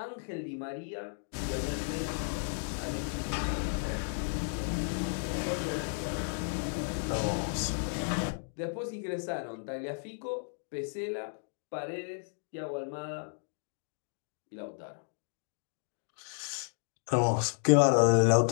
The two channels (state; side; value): silent; right; digital silence